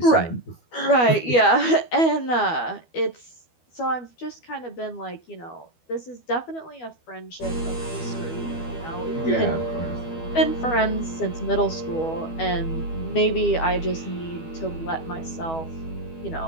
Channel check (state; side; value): late; right; 12 ms